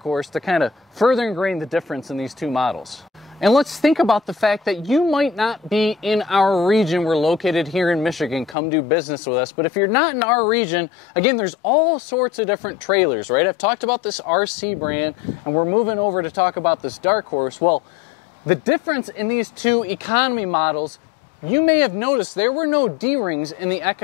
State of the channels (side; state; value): right; drops out; at 8.6 s